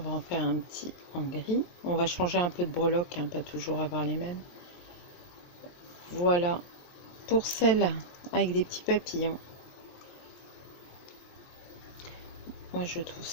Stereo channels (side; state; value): right; late; 23 ms